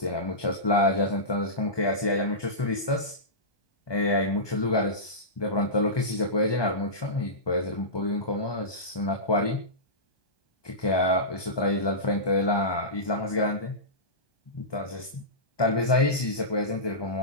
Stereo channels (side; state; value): right; late; 1.2 ms